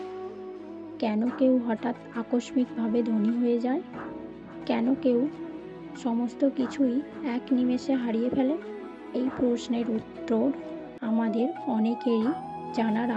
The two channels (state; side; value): identical; both; correlation 1.00